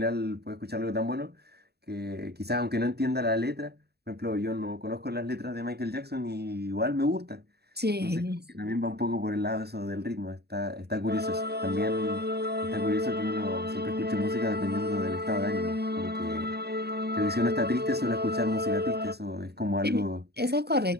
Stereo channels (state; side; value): late; left; 0.47 ms